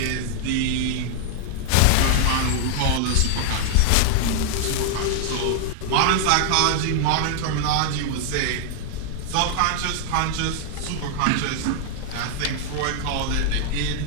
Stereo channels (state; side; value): different; both; correlation 0.00